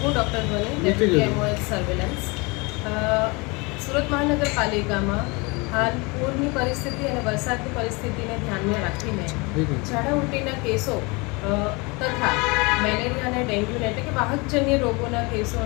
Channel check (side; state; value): right; quieter; 27.2 dB